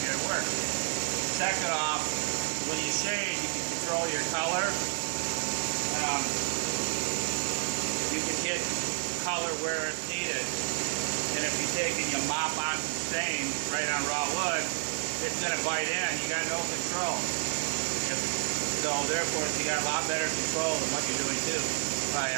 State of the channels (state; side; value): silent; left; 58 dB below the other